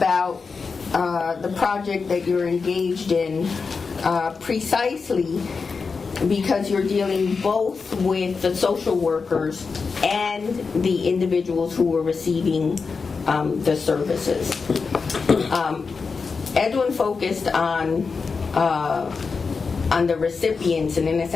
the project that you're engaged in, precisely because you're dealing both with the social workers and the individuals who were receiving the services. Edwin focused on the recipients, and in a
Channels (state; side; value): quieter; right; 4.9 dB